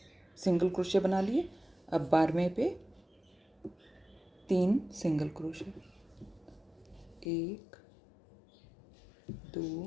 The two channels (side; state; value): right; drops out; at 7.2 s